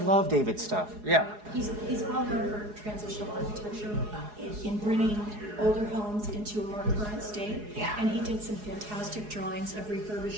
David's stuff, yeah. He's well known for transitional architecture in bringing older homes into a more current state. Yeah. And he did some fantastic drawings of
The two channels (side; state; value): left; late; 4.8 ms